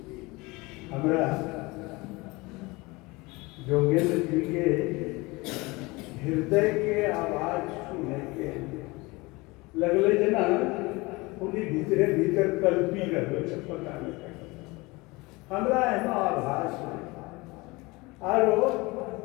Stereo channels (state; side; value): quieter; right; 23.7 dB